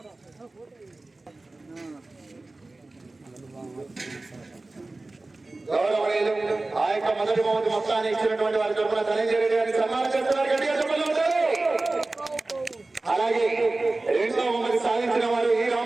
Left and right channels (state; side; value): quieter; left; 3.1 dB